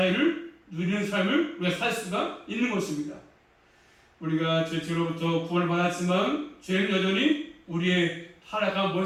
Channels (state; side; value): identical; both; correlation 1.00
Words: 누리는 삶을 우리가 살 수가 있는 것입니다. 우리가 죄로부터 구원을 받았지만 죄는 여전히 우리의 타락한